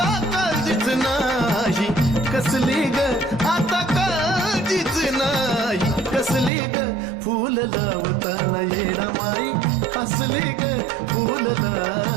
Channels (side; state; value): left; drops out; at 6.5 s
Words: काळजीच नाही कसली ग आता काळजीच नाही कसली ग फूल लावताना येडा माई हसली ग फूल